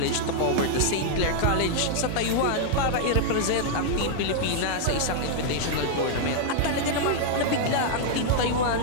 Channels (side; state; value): both; different; correlation -0.01